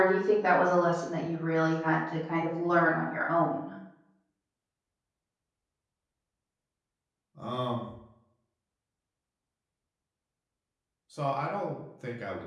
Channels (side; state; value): both; identical; correlation 1.00